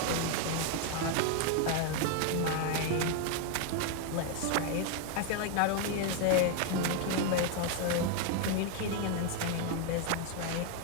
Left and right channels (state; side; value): different; both; correlation 0.01